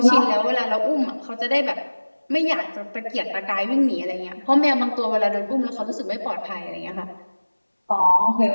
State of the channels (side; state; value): both; inverted; correlation -1.00